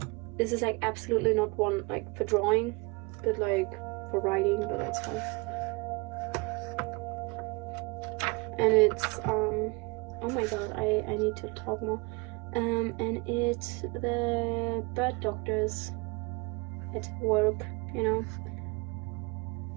This is like absolutely not one like for drawing, but like for writing, but that's fine. And it's oh my god, I need to talk more. And it's the bird doctors at work, you know.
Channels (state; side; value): quieter; left; 27.7 dB